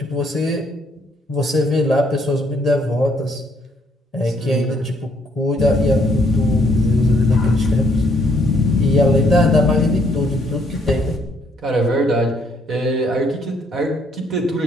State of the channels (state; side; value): normal; both; correlation 0.68